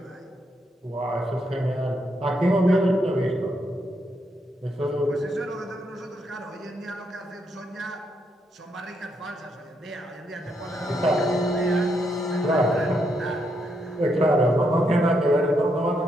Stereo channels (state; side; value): normal; both; correlation 0.78